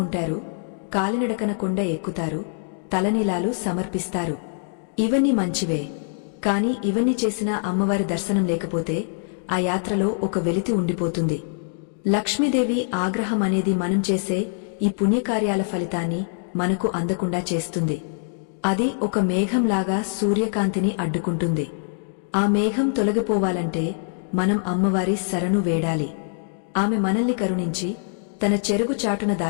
కాలినడకన కొండ ఎక్కుతారు, తలనీలాలు సమర్పిస్తారు. ఇవన్నీ మంచివే. కాని ఇవన్నీ చేసినా అమ్మవారి దర్శనం లేకపోతే ఆ యాత్రలో ఒక వెలితి ఉండిపోతుంది. లక్ష్మీదేవి ఆగ్రహం అనేది మనం చేసే ఈ పుణ్యకార్యాల ఫలితాన్ని మనకు అందకుండా చేస్తుంది. అది ఒక మేఘంలాగా సూర్యకాంతిని అడ్డుకుంటుంది. ఆ మేఘం తొలగిపోవాలంటే మనం అమ్మవారి శరణు వేడాలి. ఆమె మనల్ని కరుణించి తన చెరుగు చాటున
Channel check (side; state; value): right; silent; digital silence